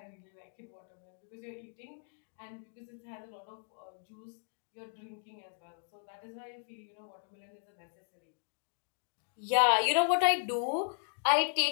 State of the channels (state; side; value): silent; right; digital silence